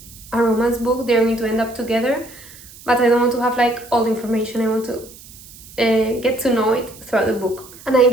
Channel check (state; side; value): noise; right; hiss, 20 dB below the sound